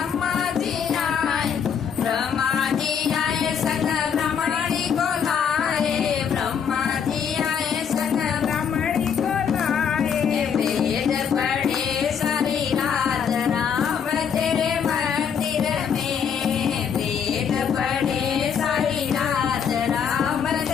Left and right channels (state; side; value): quieter; right; 7.4 dB